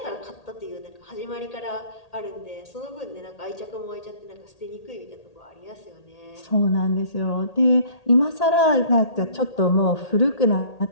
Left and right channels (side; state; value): right; late; 1.8 ms